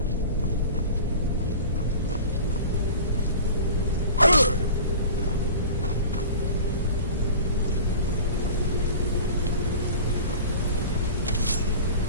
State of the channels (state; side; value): inverted; both; correlation -0.38